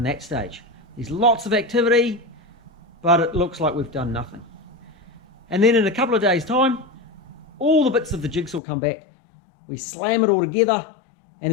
that stage. There's lots of activity, but it looks like we've done nothing. And then in a couple of days' time, all the bits of the jigsaw come back, we slam it all together, and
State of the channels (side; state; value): right; drops out; at 8.6 s